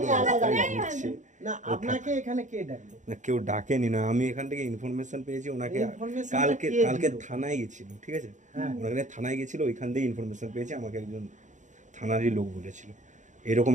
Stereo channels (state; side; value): late; left; 0.36 ms